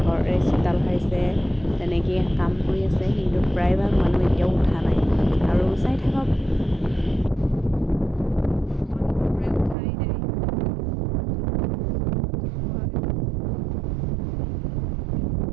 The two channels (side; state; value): left; drops out; at 9.8 s